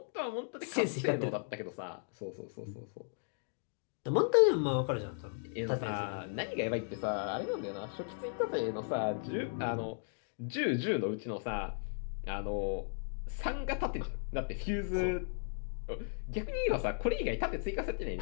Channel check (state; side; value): silent; right; digital silence